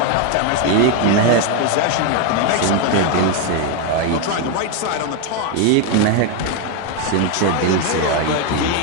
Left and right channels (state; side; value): different; both; correlation 0.01